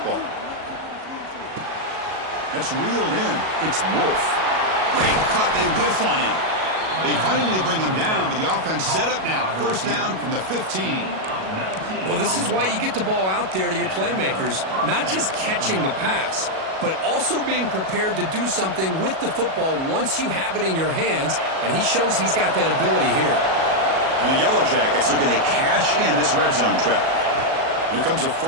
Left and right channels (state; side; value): late; left; 37 ms